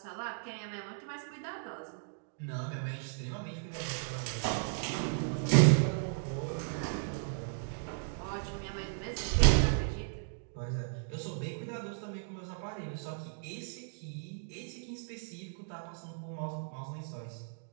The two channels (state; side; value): silent; left; digital silence